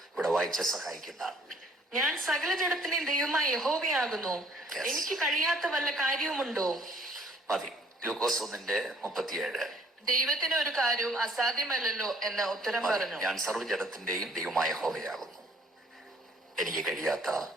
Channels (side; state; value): both; normal; correlation 0.60